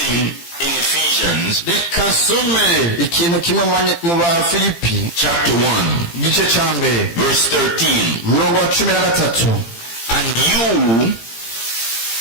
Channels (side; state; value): right; late; 18 ms